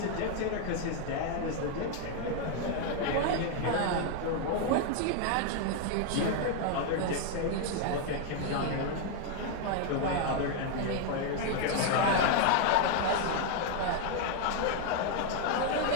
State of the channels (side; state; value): both; different; correlation 0.00